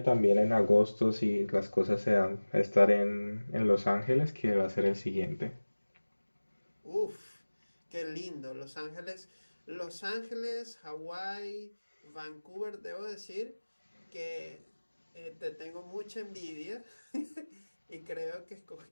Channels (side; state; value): both; inverted; correlation -1.00